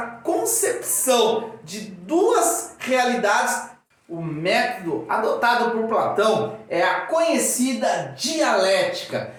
concepção de duas realidades, o método adotado por Platão é a conhecida dialética.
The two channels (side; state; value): both; identical; correlation 1.00